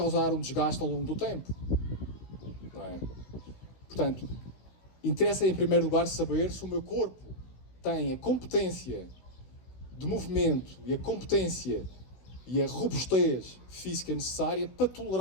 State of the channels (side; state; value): right; late; 16 ms